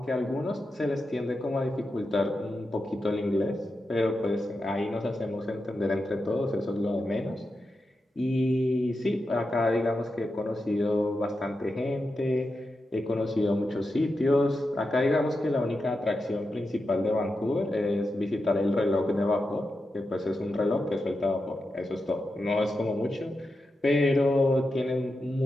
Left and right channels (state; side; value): normal; both; correlation 0.89